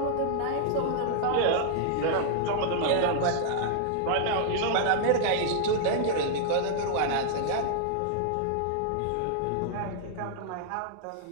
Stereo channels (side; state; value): both; different; correlation -0.01